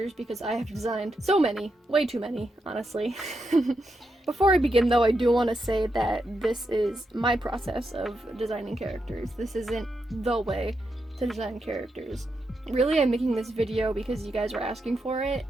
because I have designed so many, way too many, honestly. Before I begin though, I do want to say that this is my process of designing characters. This isn't the way to design characters. Really, I'm making this video because you guys are asking for it,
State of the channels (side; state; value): both; normal; correlation 0.84